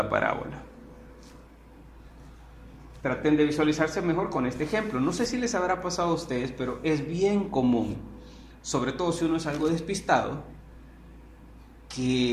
parábola. Traten de visualizarse mejor con este ejemplo. No sé si les habrá pasado a ustedes, pero es bien común, sobre todo si uno es algo despistado,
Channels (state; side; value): identical; both; correlation 1.00